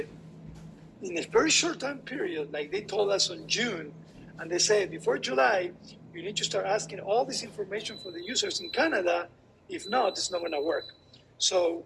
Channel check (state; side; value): identical; both; correlation 1.00